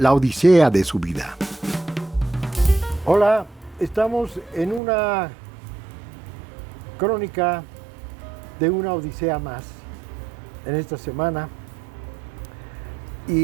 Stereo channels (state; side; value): drops out; left; at 4.8 s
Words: odisea de su vida. Hola, estamos en una crónica de una odisea más en esta semana